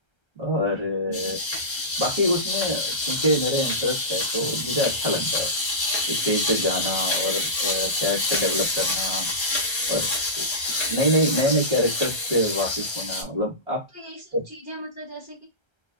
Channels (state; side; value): late; right; 1.3 ms